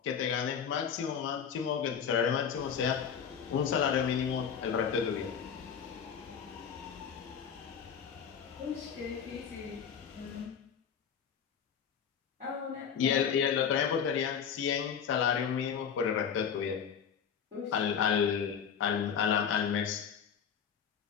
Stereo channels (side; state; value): right; quieter; 7.5 dB